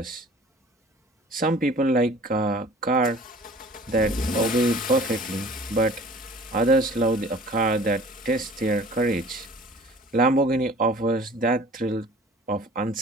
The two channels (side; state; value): both; normal; correlation 0.47